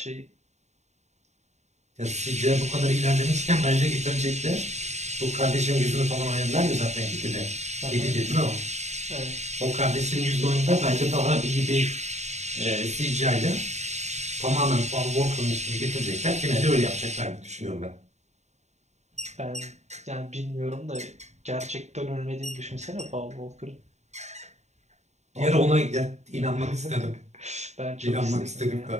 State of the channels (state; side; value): late; left; 0.33 ms